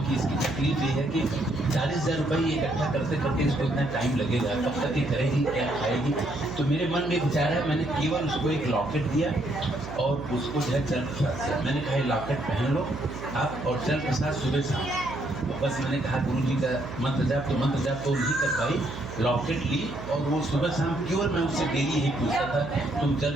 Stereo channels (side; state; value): right; noise; hum, 11 dB below the sound